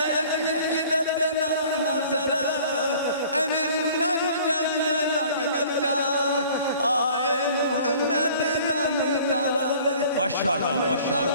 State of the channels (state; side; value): inverted; both; correlation -0.50